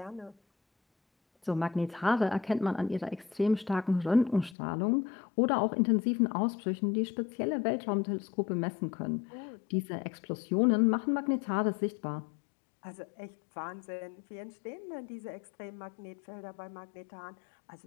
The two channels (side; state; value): right; drops out; at 4.5 s